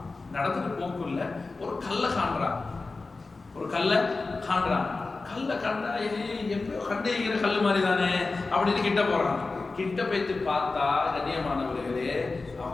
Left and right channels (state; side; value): quieter; right; 3.7 dB